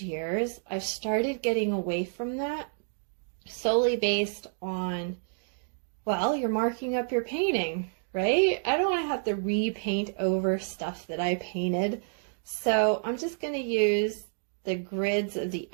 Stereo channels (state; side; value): silent; left; digital silence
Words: years, I've started getting away from that solely based on, well, you're marking up your painting, right? I don't want to have to repaint over stuff that I painted. So I'm just going to use the grids of the